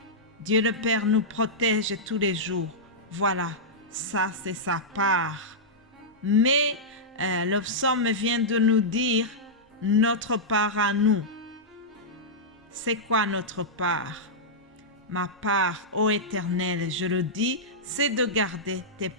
Dieu le Père nous protège tous les jours. Voilà, ça c'est sa part. Mais le psaume vient de nous dire notre part à nous. C'est quoi notre part? Ma part, ô Éternel, je le dis, c'est de garder tes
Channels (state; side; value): normal; both; correlation -0.11